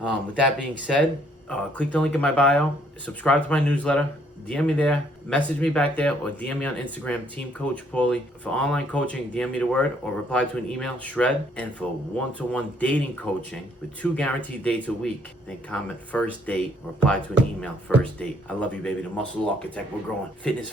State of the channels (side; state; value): both; normal; correlation 0.66